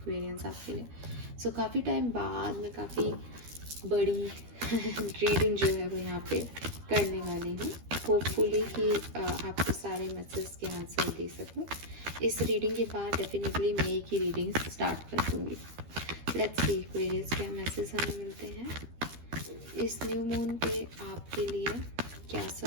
आपके लिए। सो काफ़ी टाइम बाद मैं काफ़ी बड़ी रीडिंग जो है वो यहाँ पे करने वाली हूँ। होपफुली कि आपको सारे मैसेज के आंसर दे सकूँ। इस रीडिंग के बाद डेफिनेटली मई की रीडिंग स्टार्ट कर दूँगी। लेट्स सी एक्वेरियस क्या मैसेज हमें मिलते हैं इस न्यू मून पे आपके लिए, क्या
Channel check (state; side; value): late; left; 13 ms